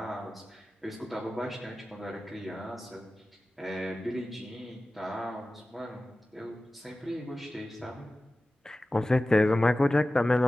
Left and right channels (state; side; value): normal; both; correlation 0.96